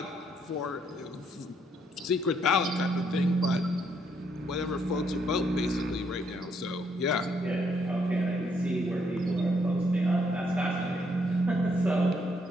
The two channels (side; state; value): both; normal; correlation 0.72